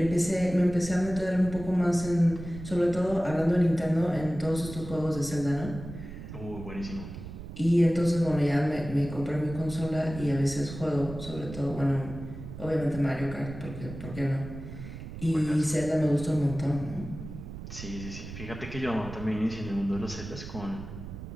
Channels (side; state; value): right; noise; rumble, 11 dB below the sound